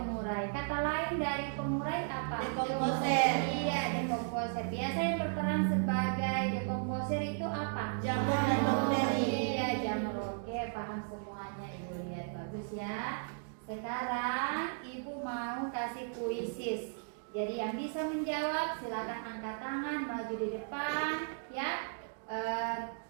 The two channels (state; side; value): silent; left; digital silence